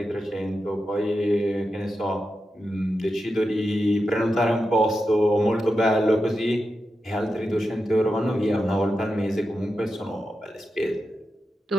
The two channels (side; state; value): both; normal; correlation 0.89